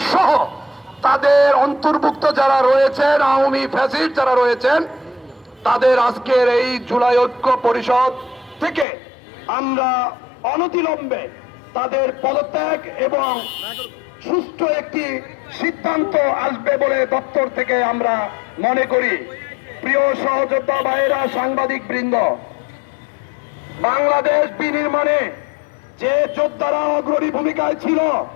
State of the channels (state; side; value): drops out; right; at 8.8 s